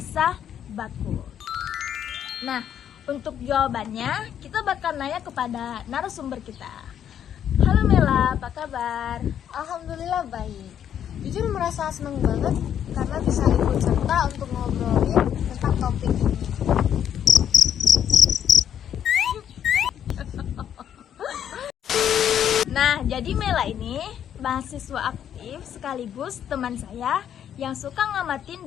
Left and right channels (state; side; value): quieter; right; 9.6 dB